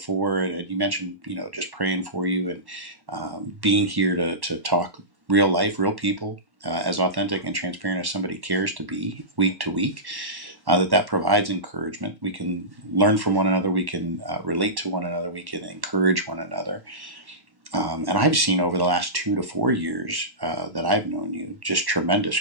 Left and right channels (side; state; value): left; late; 1.1 ms